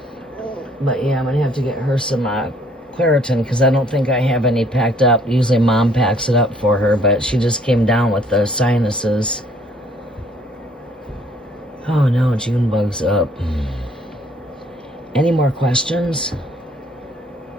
But yeah, I'm gonna have to get her some Claritin because I don't think I have any packed up. Usually Mom packs it up for her, but she just came down with the sinuses. Oh no, June bug's up. Any more questions?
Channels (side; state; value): both; normal; correlation 0.61